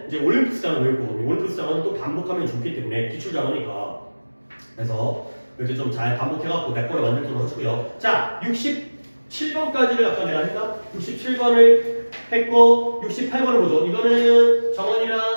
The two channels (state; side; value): inverted; both; correlation -1.00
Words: 이제 올림푸스 단어 외울 거거든요. 올림푸스 단어는 또 반복하면 좋기 때문에 기출 단어니까 그래서 이렇게 좀 잘 반복해갖고 몇 번을 만들도록 하시고요. 자, 67번까지를 아까 내가 했나? 67번을 했고 68번을 보죠. 이거는